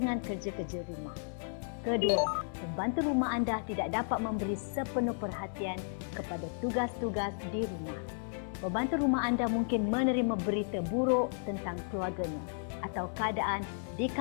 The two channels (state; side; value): silent; right; 55 dB below the other